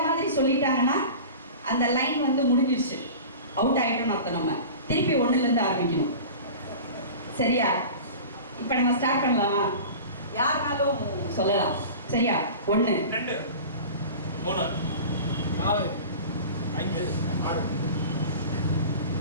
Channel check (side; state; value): both; inverted; correlation -0.36